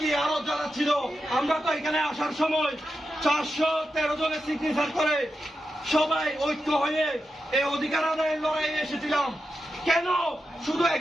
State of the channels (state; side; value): normal; both; correlation 0.89